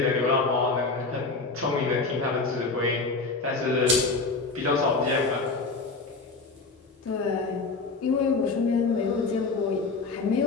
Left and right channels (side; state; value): right; quieter; 3.9 dB